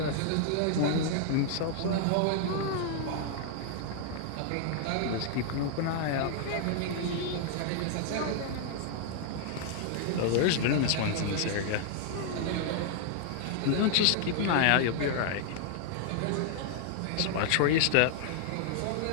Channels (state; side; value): different; both; correlation 0.00